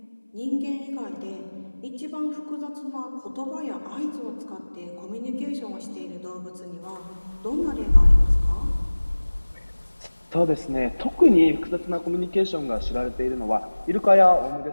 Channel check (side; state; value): both; inverted; correlation -1.00